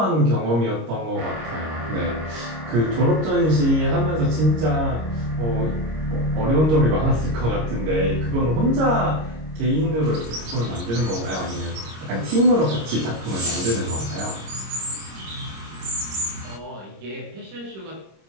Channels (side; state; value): left; late; 26 ms